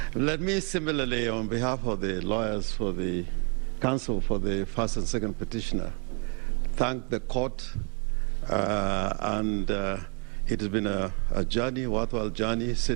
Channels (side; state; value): left; quieter; 37.2 dB